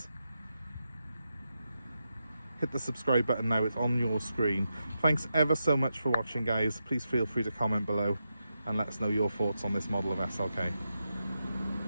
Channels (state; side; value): inverted; both; correlation -0.87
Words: Hit the subscribe button now, it's on your screen. Thanks ever so much for watching, guys. Please feel free to comment below and let us know your thoughts on this model of SLK.